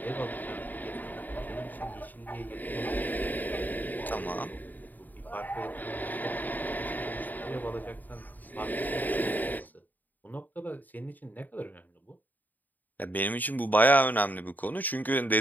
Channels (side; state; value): right; late; 0.085 ms